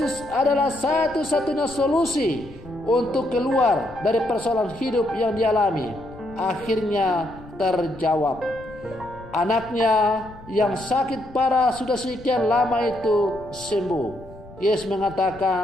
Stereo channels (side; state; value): left; noise; rumble, 19 dB below the sound